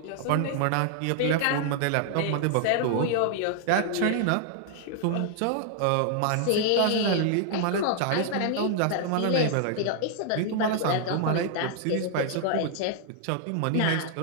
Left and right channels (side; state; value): both; different; correlation 0.00